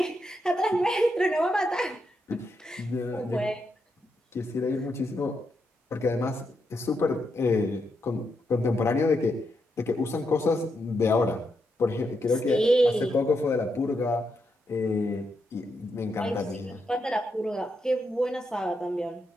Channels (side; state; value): both; normal; correlation 0.82